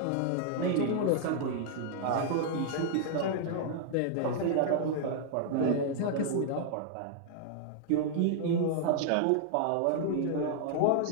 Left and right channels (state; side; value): different; both; correlation -0.01